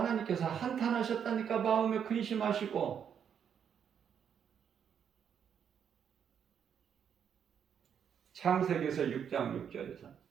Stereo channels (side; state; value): left; quieter; 8.0 dB